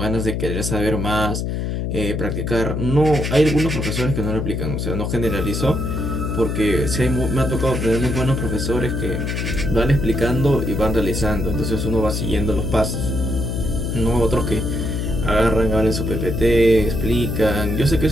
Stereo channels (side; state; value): left; noise; hum, 2 dB below the sound